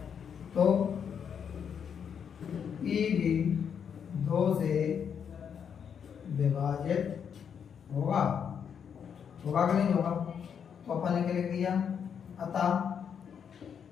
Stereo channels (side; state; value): right; quieter; 7.5 dB